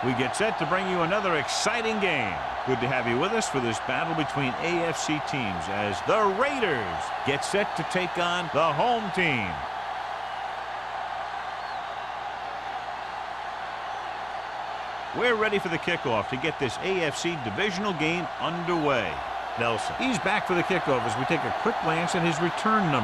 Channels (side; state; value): both; identical; correlation 1.00